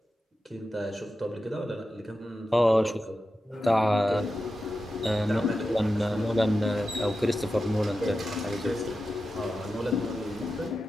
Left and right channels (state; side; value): normal; both; correlation 0.91